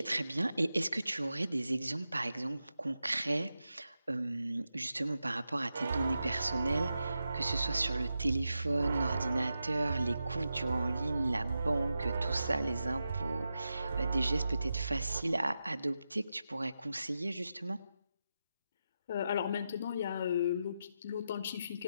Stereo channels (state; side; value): inverted; both; correlation -0.89